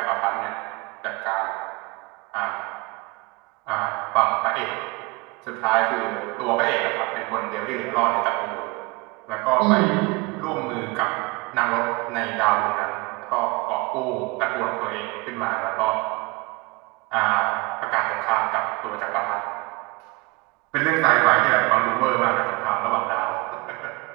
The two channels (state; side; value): quieter; left; 25.3 dB